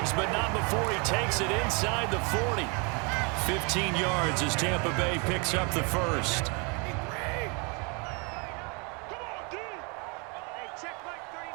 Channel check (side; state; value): left; quieter; 32.5 dB